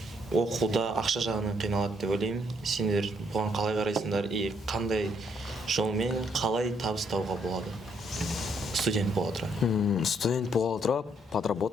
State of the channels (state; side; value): normal; both; correlation 0.70